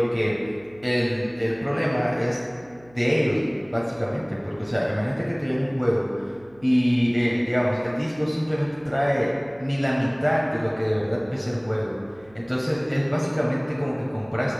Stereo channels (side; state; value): right; noise; hum, 27 dB below the sound